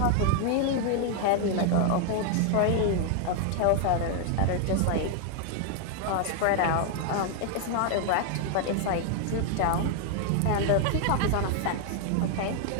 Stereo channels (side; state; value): both; different; correlation 0.00